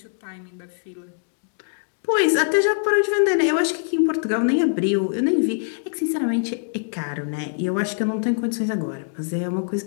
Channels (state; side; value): silent; right; digital silence